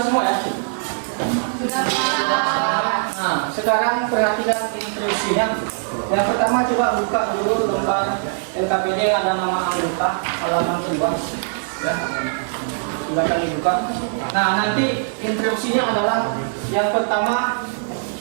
semua ya? Sudah, Pak. Nah, sekarang perhatikan instruksinya. Yang pertama coba buka dulu lembar LKPD yang ada nama anggota halaman kedua. Ya, silakan dibuka. Nah, nanti instruksinya adalah yang pertama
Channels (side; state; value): left; silent; digital silence